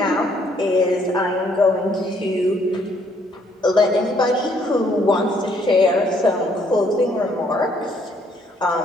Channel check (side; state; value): both; normal; correlation 0.67